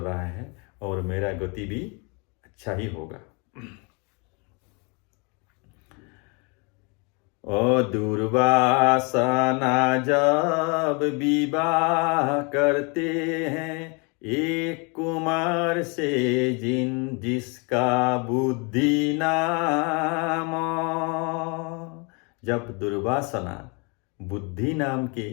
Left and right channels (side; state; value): right; quieter; 32.2 dB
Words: है और मेरा गति भी अच्छा ही होगा। ओ दुर्वासना जब विवाह करते हैं, एक कुमार से जिसका बुद्धि नाम। जब दुर्वासना बुद्धि नाम के